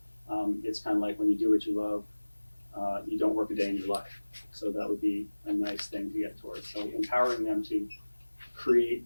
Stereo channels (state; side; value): inverted; both; correlation -1.00